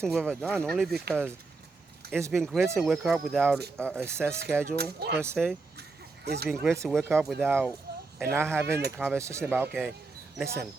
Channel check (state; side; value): quieter; left; 3.8 dB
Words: thing we've ever done, only because it's been great to wake up without a set schedule, per se. It's been great to wake up without, and not having the conversation about, okay, listen,